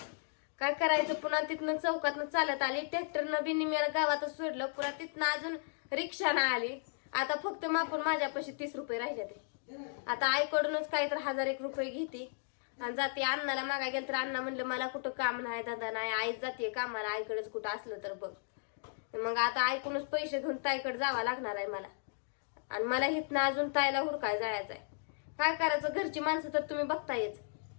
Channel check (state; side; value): silent; right; digital silence